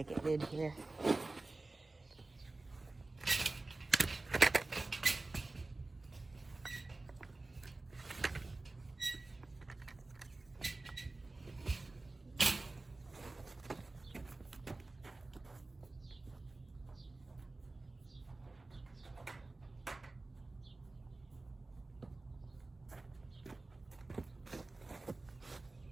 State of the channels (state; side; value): quieter; left; 3.2 dB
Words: it did here.